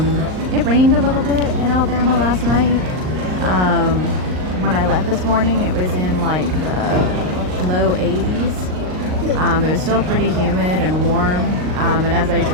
it rained a little bit in Alabama last night. When I left this morning, it was in like the low 80s. It was still pretty humid and warm. And as I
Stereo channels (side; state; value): left; late; 38 ms